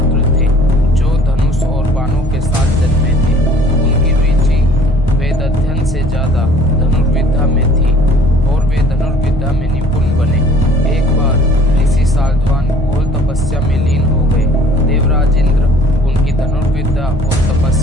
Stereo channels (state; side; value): normal; both; correlation 0.53